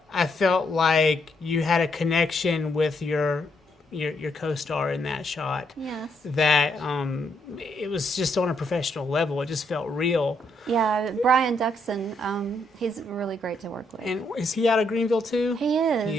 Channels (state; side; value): normal; both; correlation 0.75